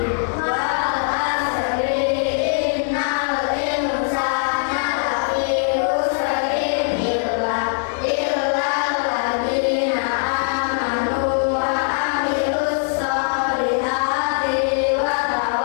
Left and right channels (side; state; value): right; silent; 63 dB below the other